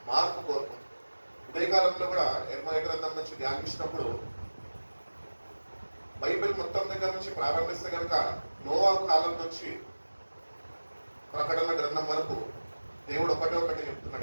మార్పు కోరుకుంటాడు. ఉదయకాలంలో కూడా యెర్మయా గ్రంథం నుంచి ధ్యానించినప్పుడు బైబిల్ మొత్తం దగ్గర నుంచి ప్రారంభిస్తే కనుక నోవా కాలం నుంచి ప్రకటన గ్రంథం వరకు దేవుడు ఒకటి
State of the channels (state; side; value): inverted; both; correlation -1.00